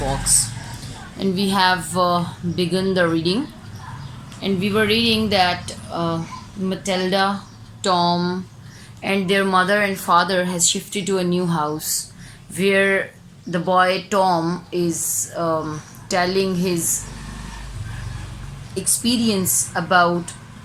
And we have begun the reading. And we were reading that Matilda, Tom, and their mother and father has shifted to a new house where the boy Tom is telling his experience about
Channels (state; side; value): identical; both; correlation 1.00